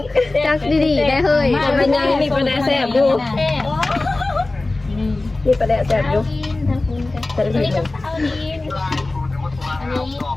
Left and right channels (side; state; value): right; quieter; 3.1 dB